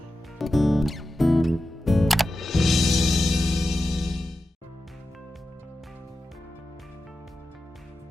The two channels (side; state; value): both; normal; correlation 0.92